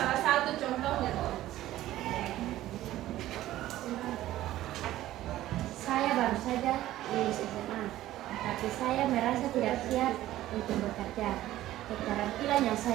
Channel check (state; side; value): quieter; left; 14.6 dB